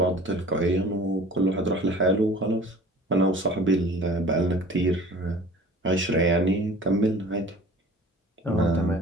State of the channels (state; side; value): normal; both; correlation 0.46